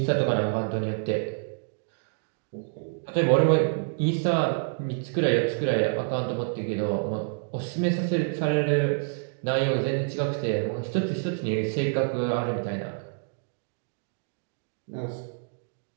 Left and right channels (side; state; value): left; silent; digital silence